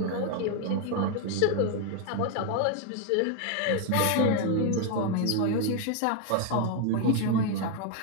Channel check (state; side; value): different; both; correlation 0.01